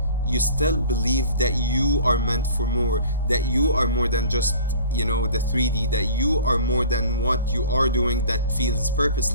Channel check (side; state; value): both; inverted; correlation -0.45